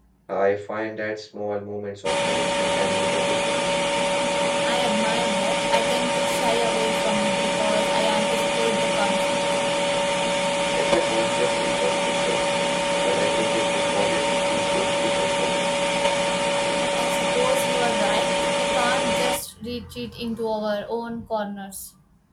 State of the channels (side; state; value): both; identical; correlation 1.00